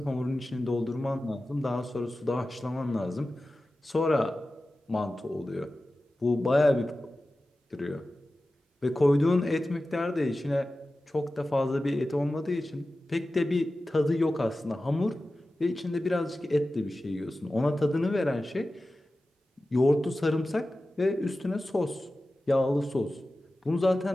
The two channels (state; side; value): normal; both; correlation 0.95